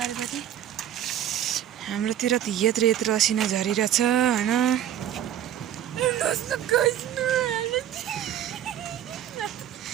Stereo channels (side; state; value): left; quieter; 11.0 dB